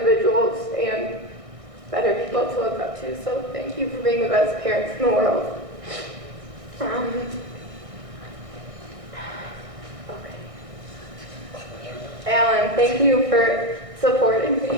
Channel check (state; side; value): late; left; 1.6 ms